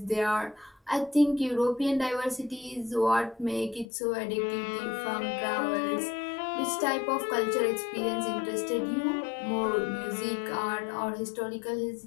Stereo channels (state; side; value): drops out; right; at 3.9 s